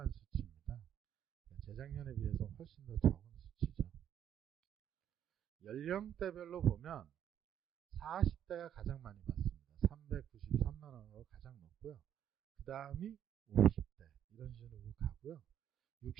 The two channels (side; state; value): left; quieter; 9.9 dB